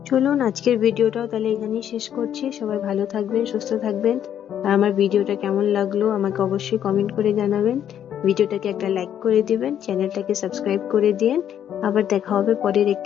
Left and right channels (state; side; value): quieter; right; 9.8 dB